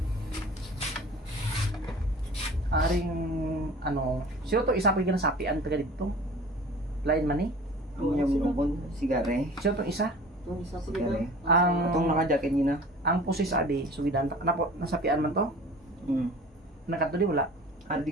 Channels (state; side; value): normal; both; correlation 0.43